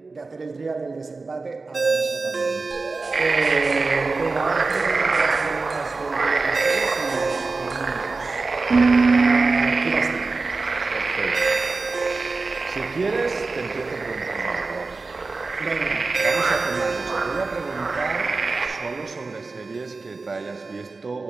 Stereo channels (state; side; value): quieter; left; 3.9 dB